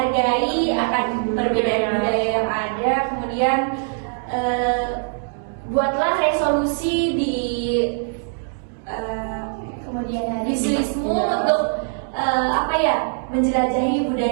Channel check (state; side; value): silent; left; 63 dB below the other